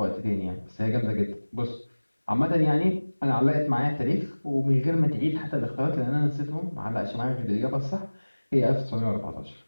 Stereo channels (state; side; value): inverted; both; correlation -1.00